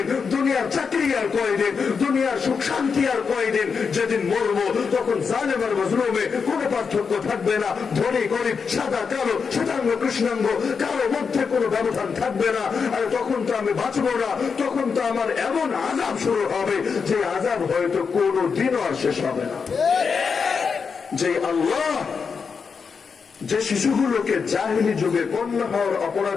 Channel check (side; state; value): right; quieter; 5.7 dB